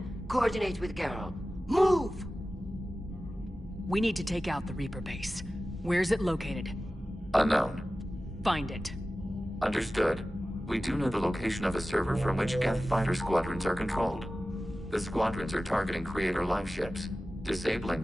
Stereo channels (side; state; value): both; normal; correlation 0.95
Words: coordinate with Geralt. Move! We need to take out the Reaper base. Where's it located? Unknown. Find it. Understood. We do know the location of a server from which Geth fighter squadrons are controlled. The squadrons are targeting Creator live ships.